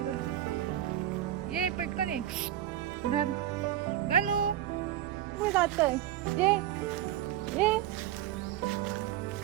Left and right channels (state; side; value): quieter; left; 12.3 dB